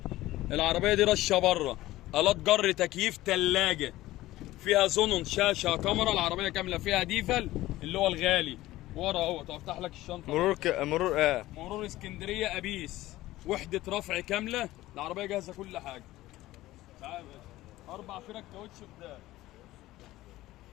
العربيه دي رشه بره، الات جر، تكييف، ثلاجه، فيها زونون، شاشه، كاميرا. العربيه كامله فيها ديفل اللي هو الغالي ورا اهو. افتح لك الشنطه. مرور اسكندريه ابيس، وحده رفع كامله. العربيه جاهزه كل حاجه. تعال يا باشا. 4 فرق كاوتش قدام.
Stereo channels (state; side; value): quieter; right; 16.6 dB